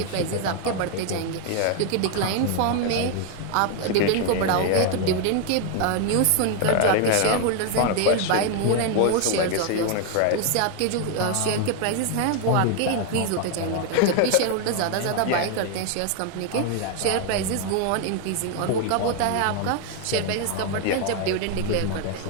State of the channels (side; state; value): both; different; correlation 0.01